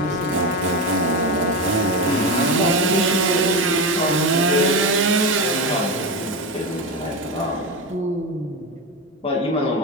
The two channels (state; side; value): normal; both; correlation 0.17